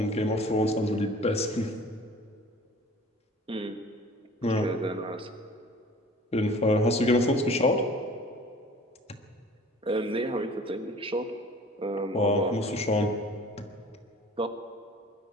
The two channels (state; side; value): normal; both; correlation 0.47